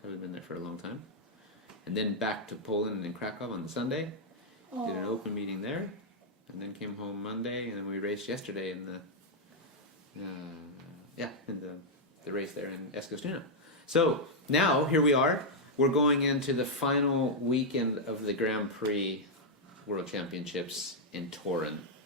Haven't been there for a long time. And then back to Poland and Krakow on the Sunday. Did an open meeting there, and then came home Monday, and then we raced yesterday in the race there in Eskilstuna. So now here we are. We're going into the final weekend of the Grand Prix World Championships in Torun.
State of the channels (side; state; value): both; normal; correlation -0.04